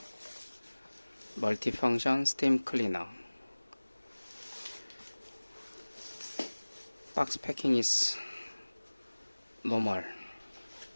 Multifunction steam cleaner. Box packing is normal.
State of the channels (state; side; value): inverted; both; correlation -1.00